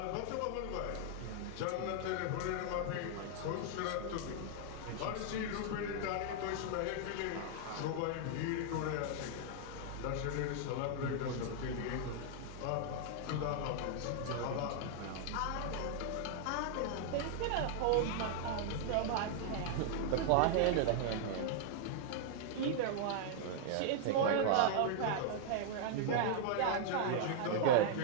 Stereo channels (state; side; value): different; both; correlation -0.01